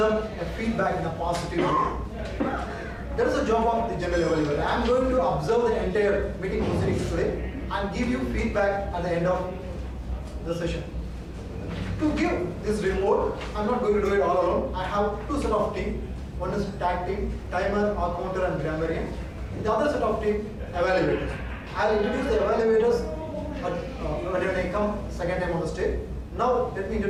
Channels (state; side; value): identical; both; correlation 1.00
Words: a feedback in a positive way. That is the job of the general evaluator. I am going to observe the entire meeting proceedings today and give you feedback at the end of the session. To give this report, I am not going to do it all alone. I have two set of team. One is tag team, timer, counter and grammarian. The other set of team, evaluators. I will introduce the evaluators when I come second time on the stage. Now let me